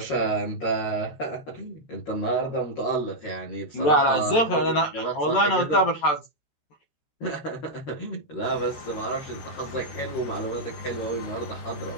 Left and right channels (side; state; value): right; late; 13 ms